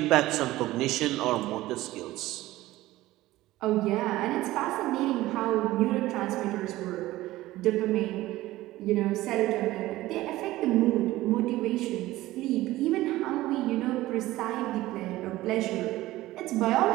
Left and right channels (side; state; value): left; quieter; 16.9 dB